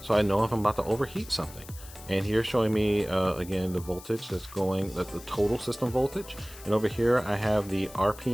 So I know if I'm about to overheat something. And here showing me, again, the voltage that's going, the total system voltage. And over here, I have the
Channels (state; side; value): noise; left; hiss, 18 dB below the sound